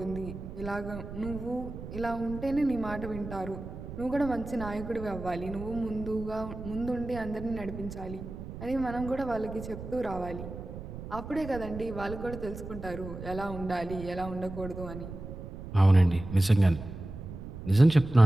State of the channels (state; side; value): noise; right; rumble, 10 dB below the sound